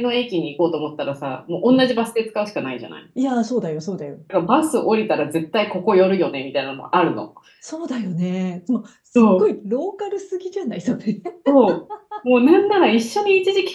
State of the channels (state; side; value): identical; both; correlation 1.00